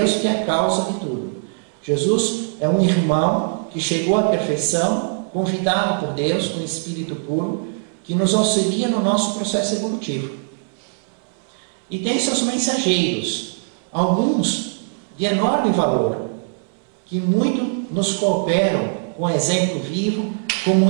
que é a causa de tudo. Jesus é um irmão que chegou à perfeição, convidado por Deus, com espírito puro, que nos auxilia no nosso processo evolutivo. E tem seus mensageiros, alguns de enorme valor, que muito nos cooperam com exemplo vivo, como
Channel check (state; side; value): silent; left; 65 dB below the other